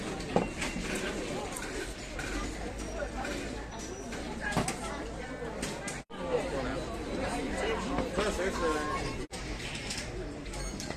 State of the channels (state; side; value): identical; both; correlation 1.00